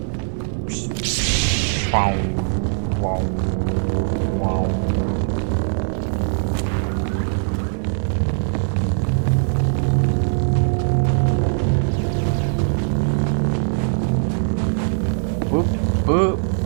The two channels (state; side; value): silent; left; 65 dB below the other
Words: Wow. Wow. Wow. Whoop, whoop.